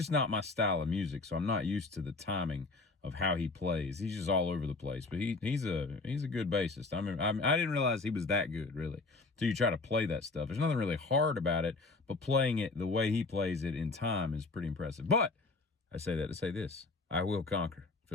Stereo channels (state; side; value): quieter; right; 3.6 dB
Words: not my style of music, so I'm not used to the timing of how he plays. He's just all over the place, but he's a good bassist. I didn't realize he was that good, really, until you try to play that stuff. There's nothing really hard about it, but playing it the way he plays it in time is pretty impressive. But I say that to say this: I will conquer